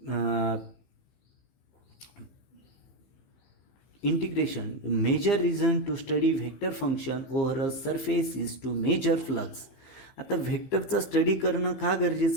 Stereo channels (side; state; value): right; late; 15 ms